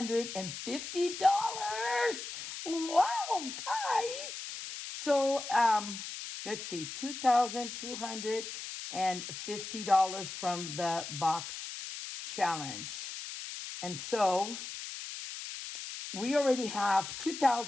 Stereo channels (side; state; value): left; noise; hiss, 8 dB below the sound